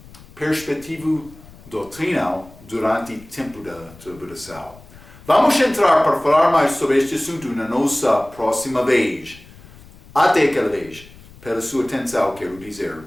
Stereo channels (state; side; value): noise; left; rumble, 22 dB below the sound